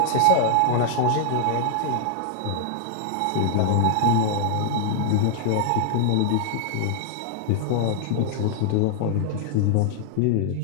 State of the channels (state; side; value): different; both; correlation 0.00